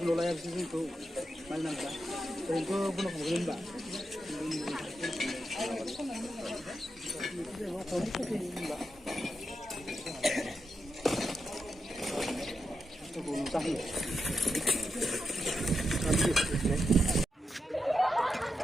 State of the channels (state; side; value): normal; both; correlation 0.86